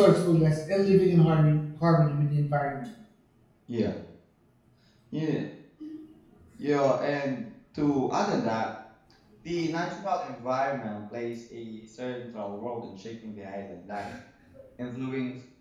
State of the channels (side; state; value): both; identical; correlation 1.00